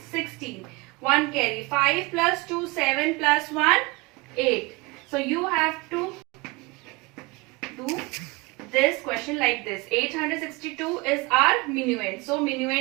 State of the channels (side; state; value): left; quieter; 25.0 dB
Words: 16. 1 carry. 5 plus 2, 7 plus 1, 8. So you have to do this question like this. 862 is our minuend. So